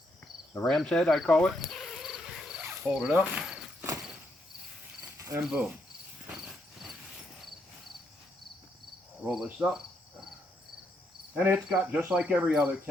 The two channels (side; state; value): both; normal; correlation 0.76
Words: The ram's head, I call it. Hold it up, and boom. Roll this up. And it's got, just like every other